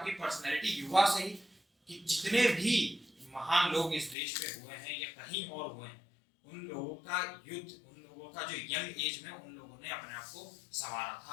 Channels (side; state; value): right; drops out; at 4.2 s